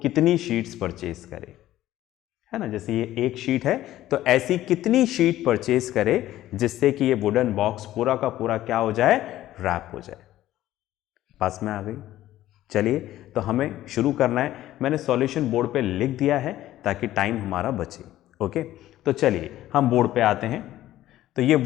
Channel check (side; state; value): right; quieter; 14.1 dB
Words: कितनी शीट्स परचेज करे, है ना। जैसे ये एक शीट है, तो ऐसी कितनी शीट परचेज करे जिससे कि ये वुडन बॉक्स पूरा का पूरा क्या हो जाए, रैप हो जाए। पास में आ गई। चलिए तो हमें शुरू करना है। मैंने सॉल्यूशन बोर्ड पे लिख दिया है ताकि टाइम हमारा बचे। ओके, तो चलिए हम बोर्ड पे आते हैं। तो ये